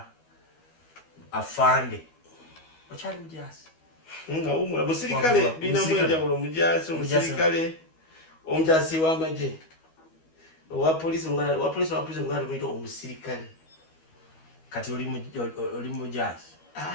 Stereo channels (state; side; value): late; right; 12 ms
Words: afande okyali mujaasi nga umula musirikale bina mwenjawulo mujaasi omusirikale omujaasi w'amagye wa polisi ngala tumuyita omusirikale kati oli mujaasi